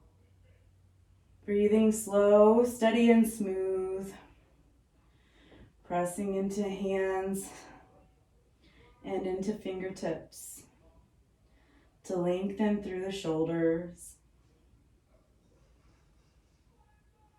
Breathing slow, steady, and smooth. Pressing into hands and into fingertips to lengthen through the shoulders.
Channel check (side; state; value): both; identical; correlation 1.00